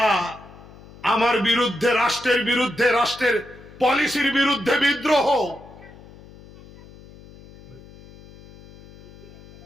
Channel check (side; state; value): left; noise; hum, 21 dB below the sound